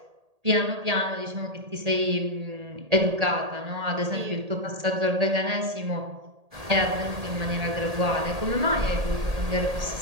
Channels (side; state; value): left; late; 1.8 ms